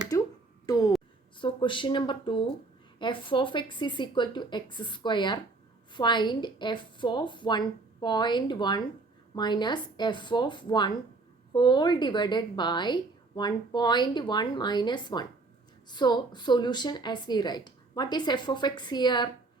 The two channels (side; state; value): left; quieter; 3.6 dB